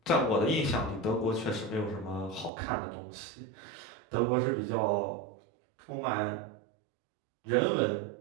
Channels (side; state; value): left; drops out; at 2.5 s